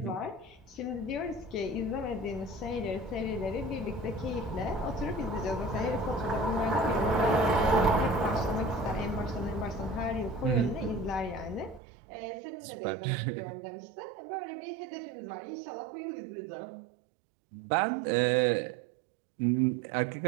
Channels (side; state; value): left; drops out; at 11.8 s